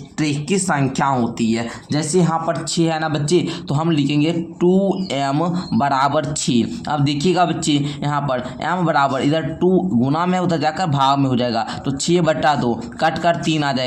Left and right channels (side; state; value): both; identical; correlation 1.00